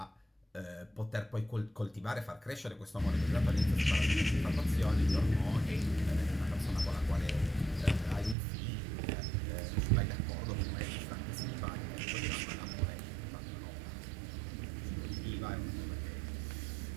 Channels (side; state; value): left; drops out; at 8.3 s